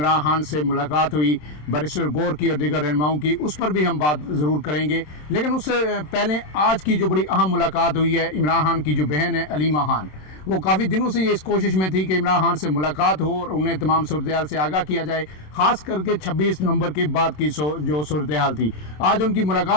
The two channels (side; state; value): right; late; 27 ms